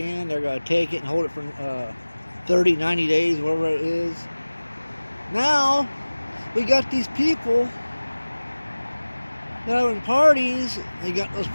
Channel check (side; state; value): both; inverted; correlation -1.00